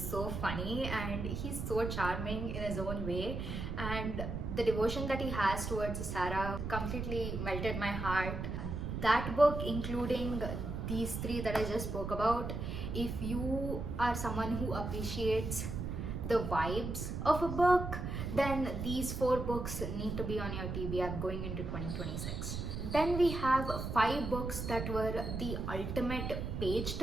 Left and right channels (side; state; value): right; noise; rumble, 4 dB below the sound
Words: funny and he's so charming in his own way, and the devotion that he has towards Sarah completely melted my heart. That book, including these three that I just spoke about, if you are someone who appreciates the vibes of a book, then these four books need to be on your TBR going into 2026. Then we have 5 books that were the ultimate page